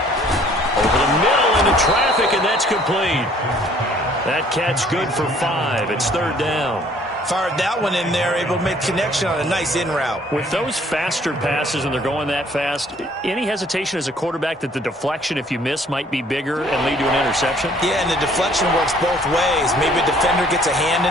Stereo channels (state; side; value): normal; both; correlation 0.58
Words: the middle into traffic, and that's complete. That catch good for 5. It's 3rd down. Fired that one in there, able to make connection on a nice in route. With those faster passes and they're going that fast, any hesitation as a quarterback that the deflection, if you miss, might be bigger and lead to an interception? Yeah, and the deflection works both ways. Maybe a defender gets a hand